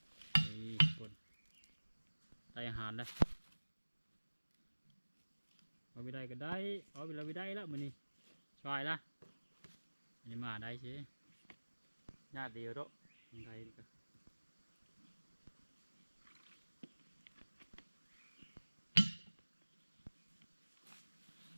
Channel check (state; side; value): inverted; both; correlation -1.00